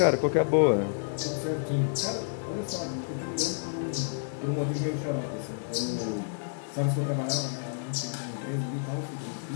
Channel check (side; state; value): right; silent; digital silence